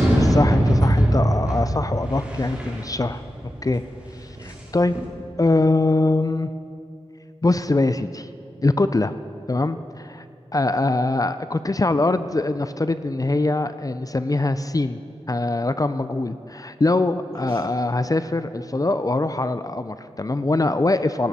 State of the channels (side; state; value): both; normal; correlation 0.88